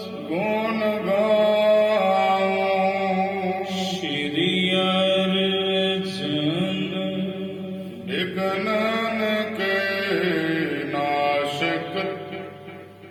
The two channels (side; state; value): both; identical; correlation 1.00